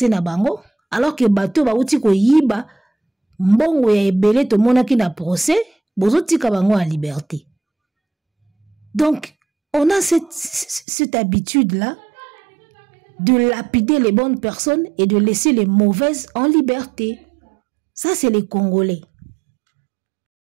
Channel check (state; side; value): drops out; left; at 10.9 s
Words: na bango alors que bato bauti ko yiba mbongo ya ebele to monaki na procès bozo tika bango en liberté. Donc on a cette habitude là de lapider les bonnes personnes et de laisser les mauvaises en liberté. Ça c'est les Congolais.